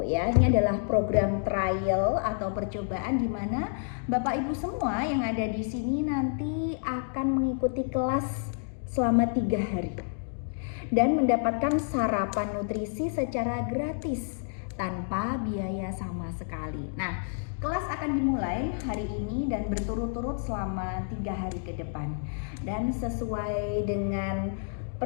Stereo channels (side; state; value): right; silent; digital silence